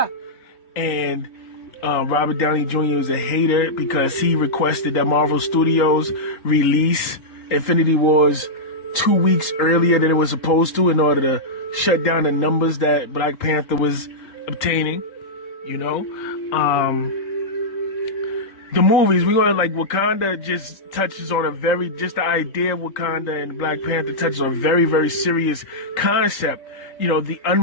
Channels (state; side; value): late; right; 3.8 ms